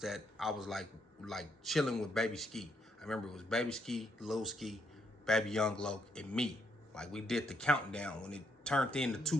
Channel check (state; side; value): normal; both; correlation 0.75